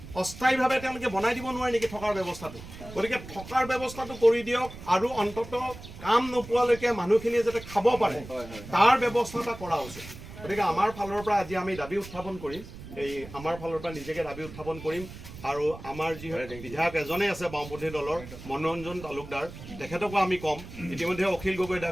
অস্থায়ীভাৱে তেওঁলোকে বনাই দিব নোৱাৰে নেকি থকাৰ ব্যৱস্থাটো গতিকে থকাৰ ব্যৱস্থাটো কৰি দিয়ক আৰু অন্ততঃ কাম নোপোৱালৈকে মানুহখিনিয়ে যাতে খাব পাৰে তাৰ ব্যৱস্থা এটা কৰা উচিত গতিকে আমাৰ ফালৰ পৰা আজি আমি দাবী উত্থাপন কৰিম এই আমাৰ ফালৰ পৰা নিজকে দাবী উত্থাপন কৰিম আৰু আমাৰ যি বিধায়ক এজনে আছে বাওঁপন্থী দলৰ মনোৰঞ্জন তালুকদাৰ তেখেতকো আমি ক'ম ইতিমধ্যে অখিল গগৈ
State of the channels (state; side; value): noise; right; rumble, 14 dB below the sound